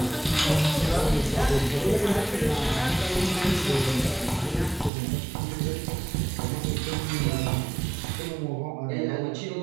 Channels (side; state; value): left; drops out; at 4.9 s